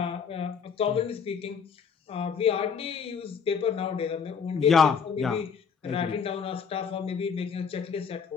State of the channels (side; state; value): right; quieter; 6.4 dB